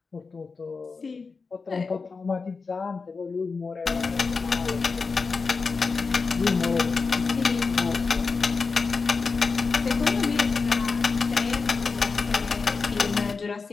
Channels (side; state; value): right; quieter; 4.6 dB